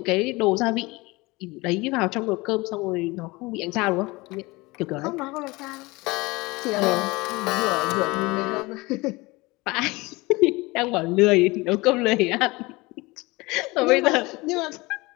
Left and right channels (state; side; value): quieter; right; 23.0 dB